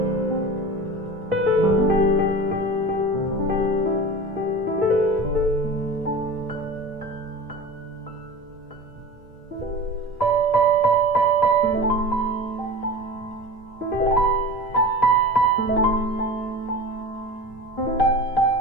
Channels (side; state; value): both; normal; correlation 0.34